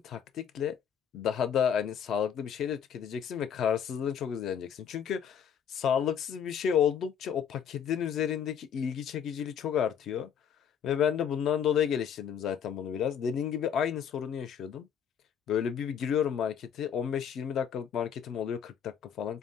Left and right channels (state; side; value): quieter; right; 8.2 dB